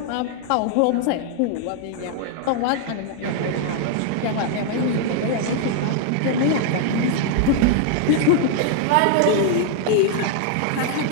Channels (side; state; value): both; different; correlation 0.00